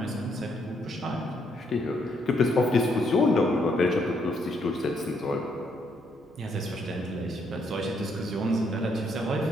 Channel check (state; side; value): normal; both; correlation 0.73